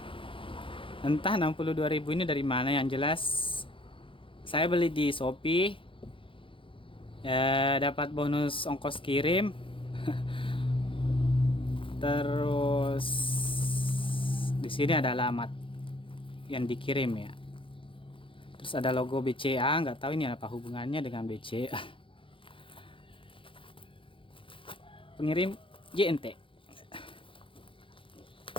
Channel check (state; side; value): late; right; 0.25 ms